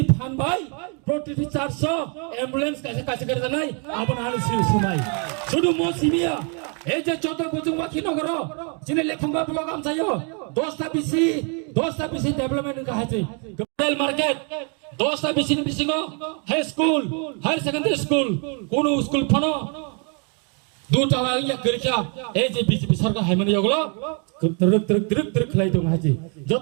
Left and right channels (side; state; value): left; quieter; 37.5 dB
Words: ফানবাই প্রতিটি 400 অ্যাম্বুলেন্স কাছে করে নাই আপনার সময় শুধু মৌসুমিয়া এই যে চৌদ্দ বুঝুং বাকি নগর চিনি লেখুঙ্গা ব্লক আমসাইও 10টা বিসি ডেভেলপমেন্ট কাহাছে রেল মার্কেট 10টা BC high school higher secondary school কোন স্কুল ফানো দুটা ইয়া গরিকা এই যে বিজেপি সরকার হাইমানি ওগুলো তরক খেলাই দং হাজি